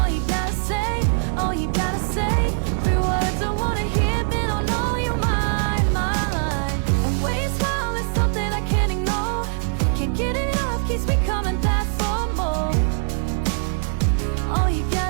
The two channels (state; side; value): silent; left; digital silence